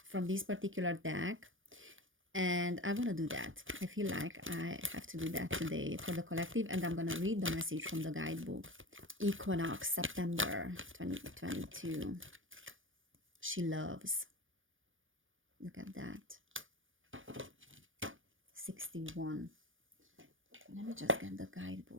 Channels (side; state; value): left; late; 0.57 ms